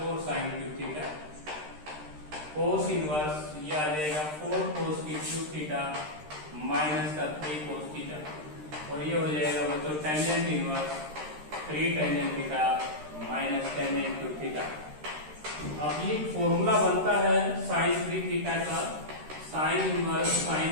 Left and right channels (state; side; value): late; left; 13 ms